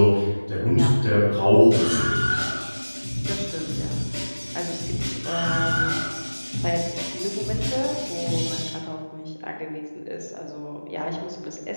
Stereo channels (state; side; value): inverted; both; correlation -1.00